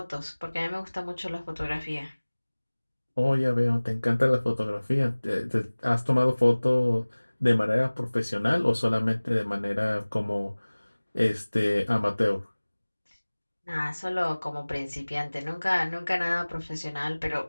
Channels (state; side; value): inverted; both; correlation -1.00